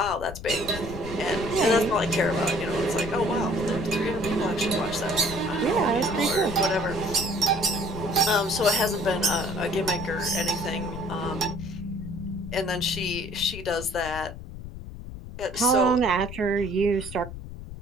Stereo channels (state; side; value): noise; left; rumble, 11 dB below the sound